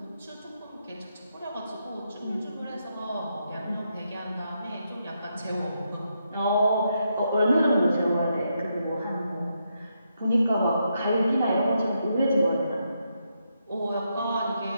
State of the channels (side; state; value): both; inverted; correlation -0.81